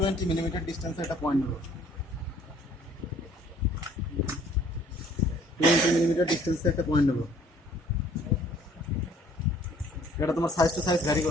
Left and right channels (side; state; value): both; normal; correlation 0.57